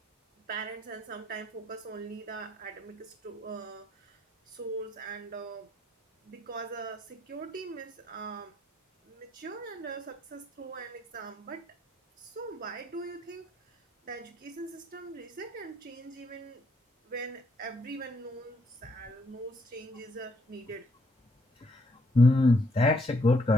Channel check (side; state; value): both; normal; correlation 0.71